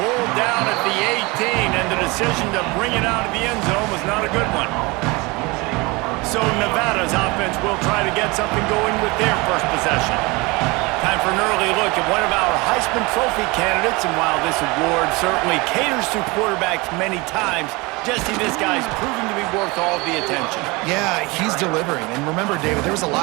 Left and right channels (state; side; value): quieter; left; 25.0 dB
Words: down at the 18, and the decision to bring it out of the end zone was not a good one. So Nevada's offense will try to get something going with their first possession. Time for an early look at one of our Heisman Trophy candidates, and while this award certainly caters to quarterbacks many times, Jesse, this guy's proving to be worth all of the attention. Yeah, he's delivering. And remember, David, there was a